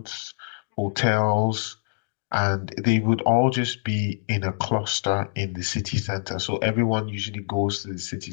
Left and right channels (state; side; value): silent; right; digital silence